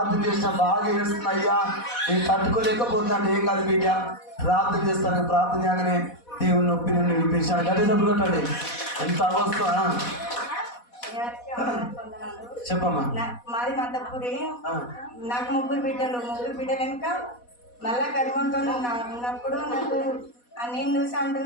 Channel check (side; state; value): right; late; 4.1 ms